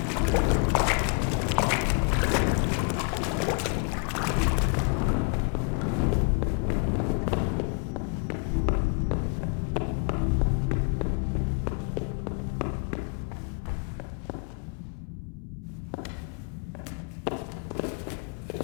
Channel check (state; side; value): quieter; right; 36.9 dB